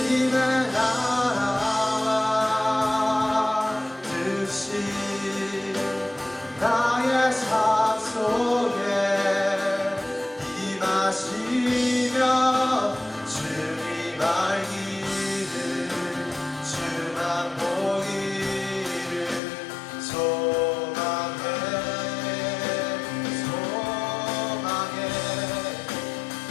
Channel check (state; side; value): drops out; right; at 19.4 s